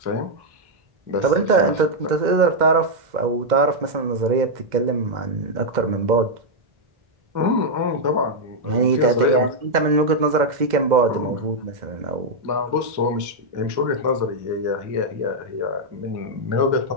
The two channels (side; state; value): left; late; 2.0 ms